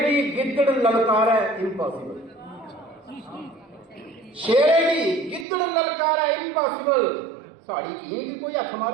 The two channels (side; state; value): left; drops out; at 5.5 s